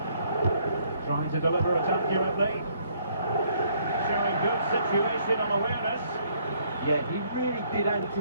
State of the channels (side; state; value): both; inverted; correlation -0.66